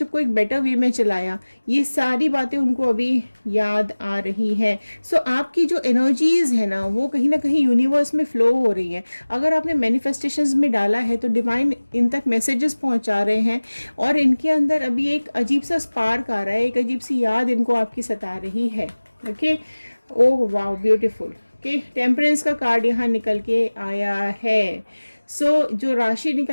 को एक बेटर वे में चलाया। ये सारी बातें उनको अभी याद आ रही हैं। सो आपकी जो एनर्जीज़ है ना वो कहीं ना कहीं यूनिवर्स में फ़्लो हो रही है। अगर आपने मैनिफेस्टेशंस में डाला है तो डिवाइन इन तक मैसेजेस पहुंचा रहे हैं और इनके अंदर अभी एक अजीब सा स्पार्क आ रहा है, एक अजीब सी याद इनको आपकी सता रही है। Okay, oh wow, beautiful. Okay, temperance का कार्ड यहाँ निकल के आया है। सो जो राशि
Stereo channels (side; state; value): both; inverted; correlation -1.00